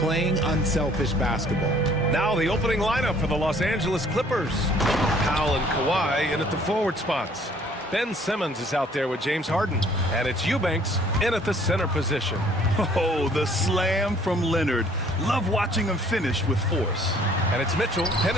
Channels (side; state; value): both; normal; correlation 0.58